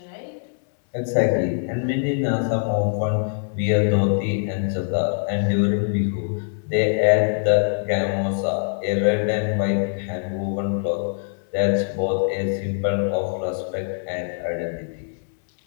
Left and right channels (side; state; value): right; silent; digital silence